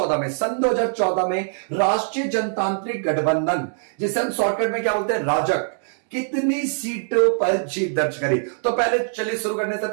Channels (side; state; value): left; silent; digital silence